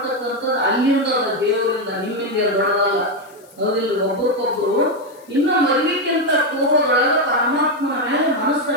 ಅಲ್ಲಿಂದ ದೇವರಿಂದ, ನಿಮ್ಮಿಂದ ದೊಡ್ಡದಲ್ಲ, ಹೌದಿಲ್ಲ. ಒಬ್ಬರಿಗೊಬ್ರು ಇನ್ನು ಮದುವೆಕ್ಕಿಂತ ಪೂರ್ವದೊಳಗ ಪರಮಾತ್ಮನ ಮೇಲೆ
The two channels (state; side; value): noise; left; hiss, 28 dB below the sound